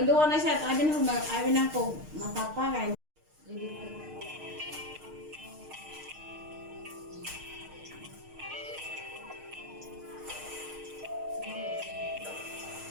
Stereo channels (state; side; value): late; left; 6.5 ms